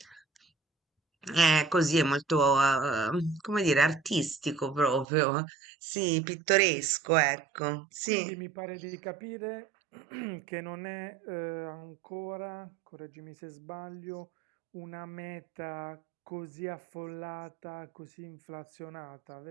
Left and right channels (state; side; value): drops out; left; at 5.1 s